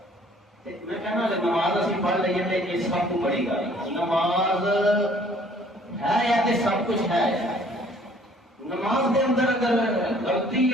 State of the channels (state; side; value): normal; both; correlation 0.57